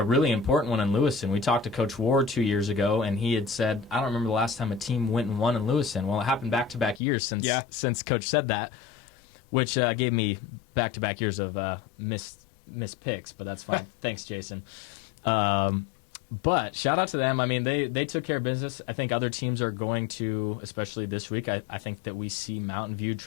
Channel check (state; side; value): drops out; right; at 7.0 s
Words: really important one in Lewiston. We talked to Coach Ward 2 years ago, and he had said, I don't remember the last time a team went and won in Lewiston. Well, it happened back-to-back years since Coach said that, which gave me back-to-back years of missed picks, but that's fine. Thanks, Jason. But shout out to them. I mean, they took care of business. I think other teams are going to, especially this week. I think that we see Mountain View